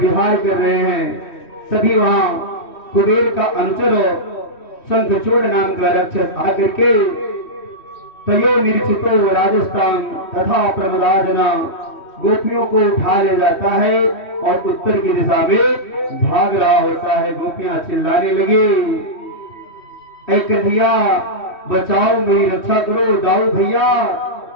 कर रहे हैं। तभी वहां कुबेर का अनुचर शंखचूड़ नाम का राक्षस आकर के तयो निरीक्षितो राजस्थान तथा प्रमदाजना गोपियों को उठा ले जाता है और उत्तर की दिशा में भाग रहा होता है। गोपियां चिल्लाने लगी, ऐ कन्हैया बचाओ, मेरी रक्षा करो। दाऊ भैया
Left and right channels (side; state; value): right; late; 3.1 ms